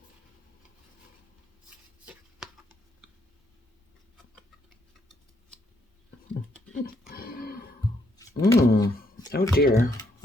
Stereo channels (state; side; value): normal; both; correlation 0.74